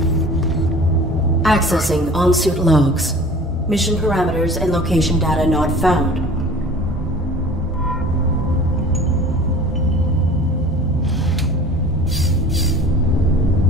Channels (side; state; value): both; normal; correlation 0.43